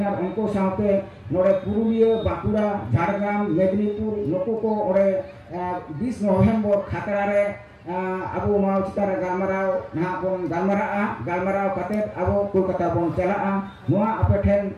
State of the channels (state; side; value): identical; both; correlation 1.00